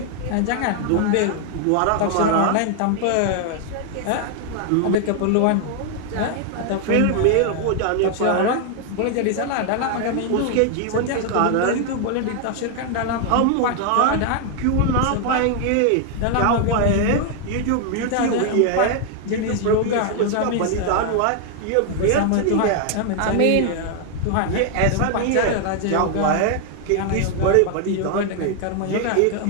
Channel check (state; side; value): different; both; correlation 0.00